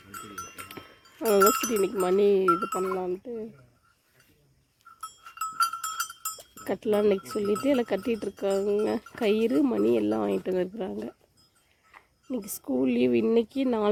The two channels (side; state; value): both; identical; correlation 1.00